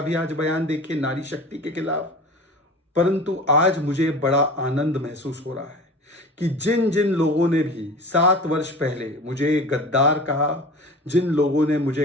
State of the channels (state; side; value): normal; both; correlation 0.36